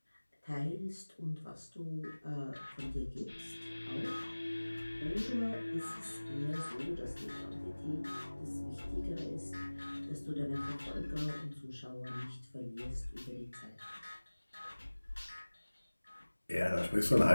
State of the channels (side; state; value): both; inverted; correlation -1.00